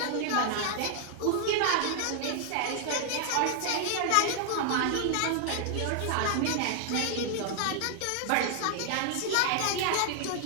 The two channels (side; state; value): both; different; correlation 0.00